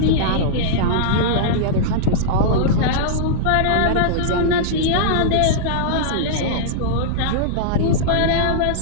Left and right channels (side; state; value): both; different; correlation -0.02